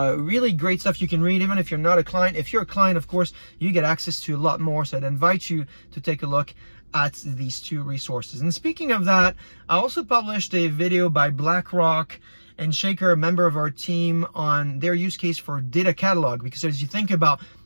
really great stuff you can read, even if you're not a client. If you're a client, of course, you get access to a lot more. So I'd invite you to take a look at these 2 resources. And speaking of that, I also published a video by BlackRock and Shaker, a member of our team, on their use case for data catalog. Because as you think about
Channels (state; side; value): inverted; both; correlation -1.00